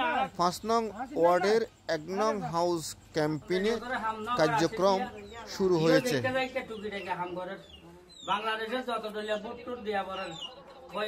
৫ নং ওয়ার্ডের ১ নং হাউস ক্যাম্পেইনে কার্যক্রম শুরু হয়েছে। বাংলাদেশের যত দলীয় ভোট দিয়া বলেন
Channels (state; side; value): identical; both; correlation 1.00